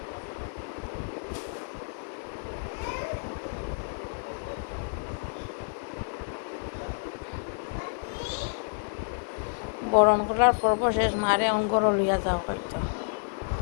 বরণ করার পর্ব শেষ, মারে অঙ্গর লইয়া যাওয়া হয়তো।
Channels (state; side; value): silent; right; digital silence